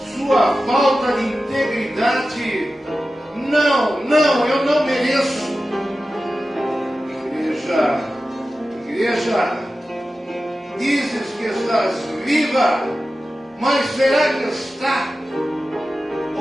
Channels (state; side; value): normal; both; correlation 0.94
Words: sua falta de integridade, não, eu não mereço. Igreja, dizes que estás viva, mas será que está?